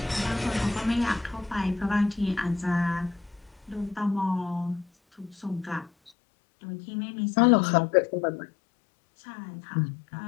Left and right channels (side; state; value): right; drops out; at 6.1 s